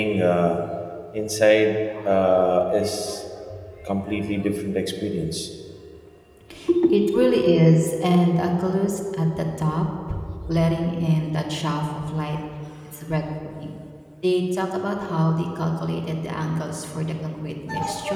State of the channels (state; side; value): identical; both; correlation 1.00